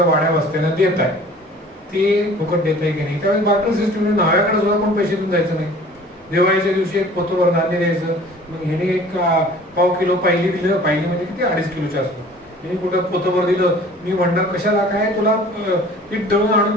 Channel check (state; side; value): normal; both; correlation 0.48